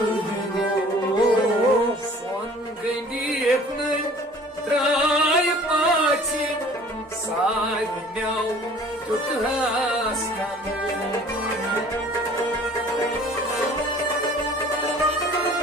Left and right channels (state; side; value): normal; both; correlation 0.50